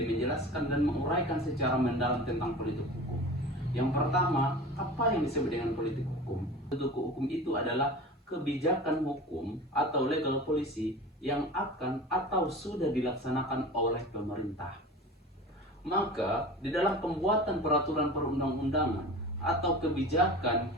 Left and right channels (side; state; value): both; normal; correlation 0.35